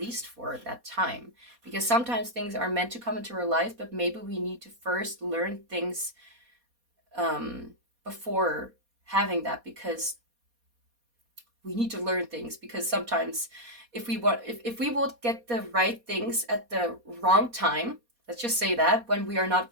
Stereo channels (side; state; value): left; late; 4.2 ms